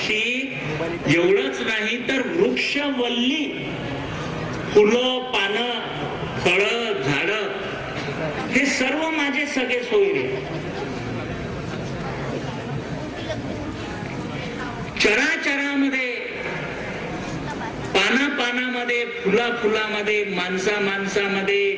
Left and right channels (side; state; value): both; identical; correlation 1.00